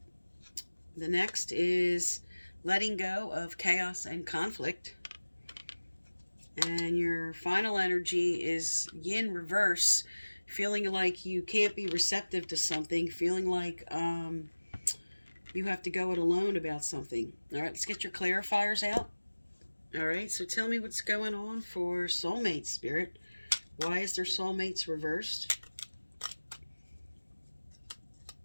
The next is letting go of chaos and conflict. And your final energy is yin reverse, feeling like you can't be receptive to something, feeling like you have to go it alone about something. All right, let's get your clarifiers out. All right, so tell me what's going on for soulmate, Spirit. Why is their soulmates reversed?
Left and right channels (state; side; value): inverted; both; correlation -1.00